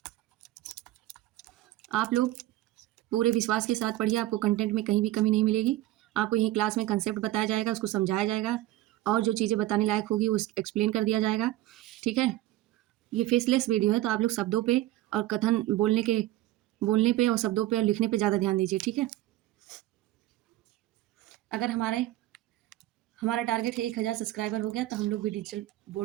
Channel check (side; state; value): left; quieter; 15.7 dB